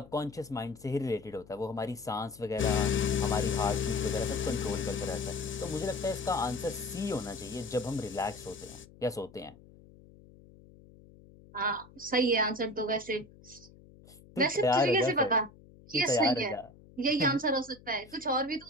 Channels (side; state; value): left; noise; hum, 23 dB below the sound